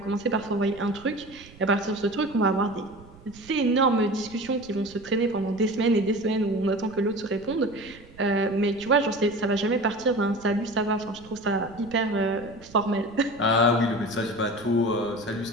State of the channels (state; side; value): noise; right; rumble, 22 dB below the sound